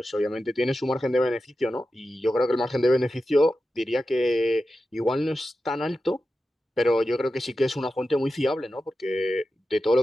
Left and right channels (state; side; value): normal; both; correlation 0.92